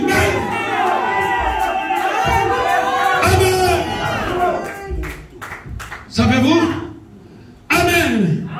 Amen. Savez-vous? Amen.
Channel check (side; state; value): both; identical; correlation 1.00